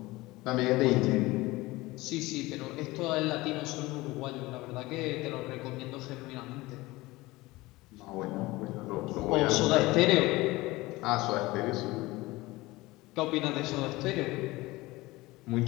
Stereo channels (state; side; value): quieter; right; 20.4 dB